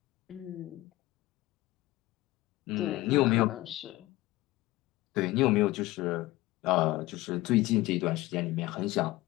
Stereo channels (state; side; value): quieter; right; 18.3 dB